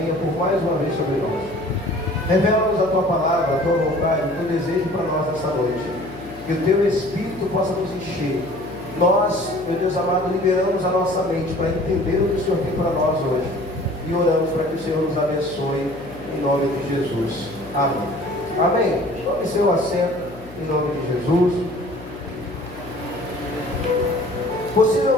por mais uma vez sobre nós. Revela-nos a Tua palavra, a Tua vontade, o Teu desejo para nós nessa noite. Que o Teu Espírito possa nos encher. Nós, meu Deus amado, liberamos a nossa mente para entender o que o Senhor tem para nós hoje. E oramos para que o Senhor nos abençoe em nome de Jesus. Amém. Amém. Tome seu assento em nome de Jesus.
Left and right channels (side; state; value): left; noise; hum, 17 dB below the sound